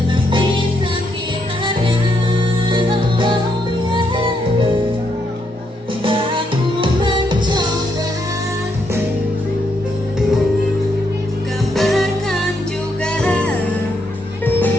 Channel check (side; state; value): both; normal; correlation 0.77